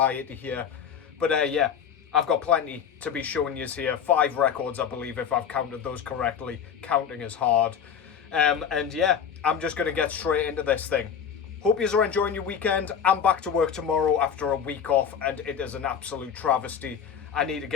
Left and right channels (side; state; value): right; quieter; 7.7 dB